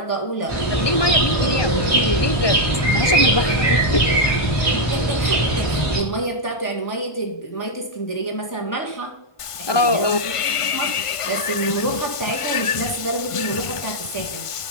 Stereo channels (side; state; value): right; late; 1.5 ms